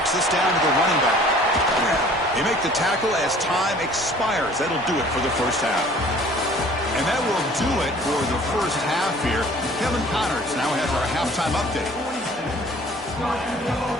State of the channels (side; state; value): both; normal; correlation 0.51